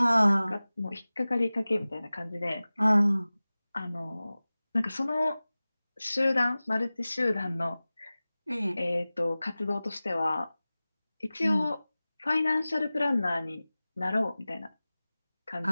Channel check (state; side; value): inverted; both; correlation -0.98